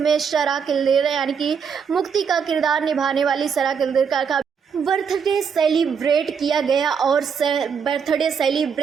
सरा किल्देर यानी कि मुक्ति का किरदार निभाने वाली सरा किल्देर का बर्थडे सेलिब्रेट किया गया और बर्थडे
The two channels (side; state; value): left; quieter; 6.6 dB